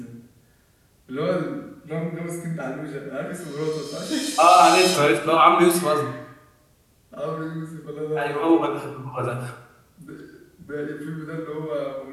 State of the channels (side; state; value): both; identical; correlation 1.00